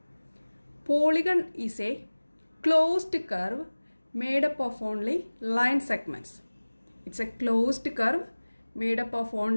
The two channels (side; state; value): both; inverted; correlation -1.00